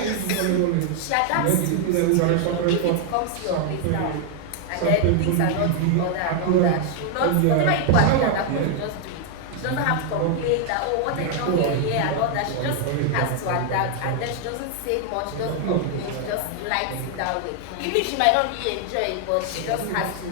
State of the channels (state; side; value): different; both; correlation 0.00